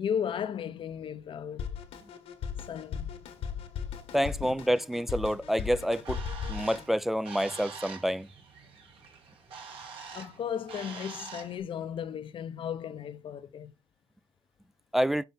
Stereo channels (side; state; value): both; normal; correlation 0.84